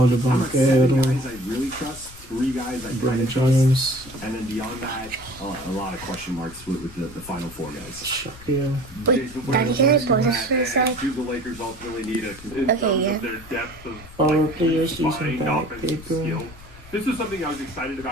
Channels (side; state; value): left; noise; rumble, 19 dB below the sound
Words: the I'm at 7 Banquero, guys I really trust, 3 guys I Brennan kind of trust, James, and then beyond that, a lot of question marks with the final 4 guys. Shaquille. Wait, Jason, what Daddy, are can I the pause ones this for a that sec? do the Lakers ultimately need it? In Okay, terms yeah. of their depth of Power like players using combined that offensive paper. skill. This was something I was excited